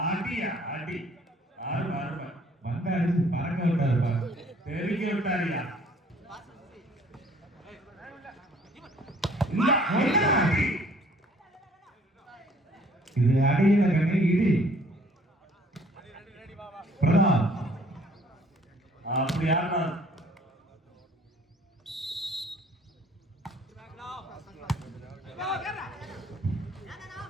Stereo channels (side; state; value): both; normal; correlation 0.57